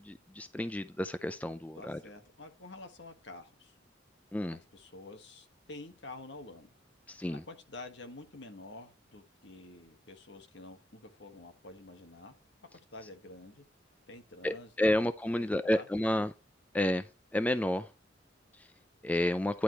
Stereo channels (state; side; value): normal; both; correlation 0.87